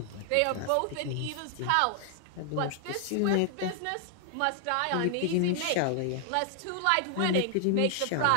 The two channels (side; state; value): both; different; correlation 0.00